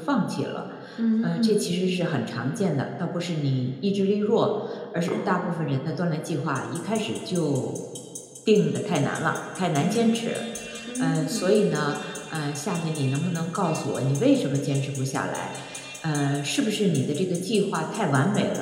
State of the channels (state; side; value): identical; both; correlation 1.00